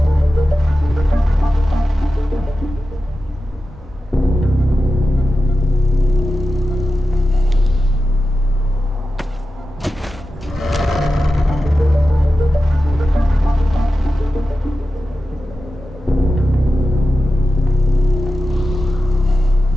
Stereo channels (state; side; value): normal; both; correlation 0.92